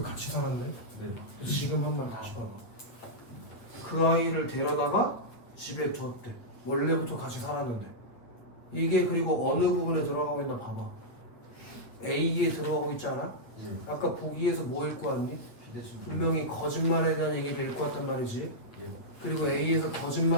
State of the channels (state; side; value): late; right; 8.5 ms